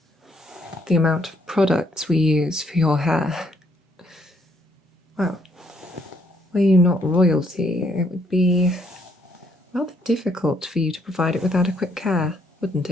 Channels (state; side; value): normal; both; correlation 0.70